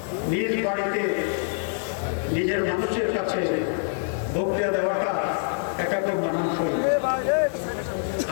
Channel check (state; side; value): silent; right; digital silence